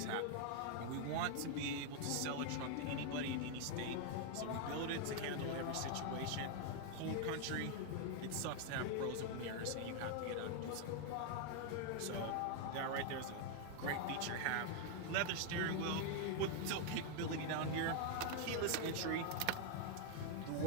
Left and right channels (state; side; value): different; both; correlation 0.00